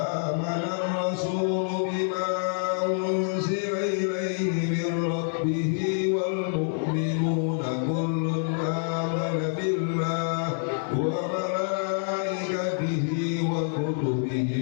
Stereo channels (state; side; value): silent; right; 60 dB below the other